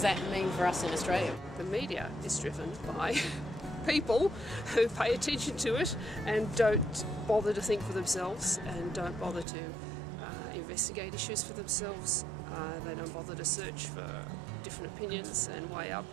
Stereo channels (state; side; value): drops out; left; at 9.5 s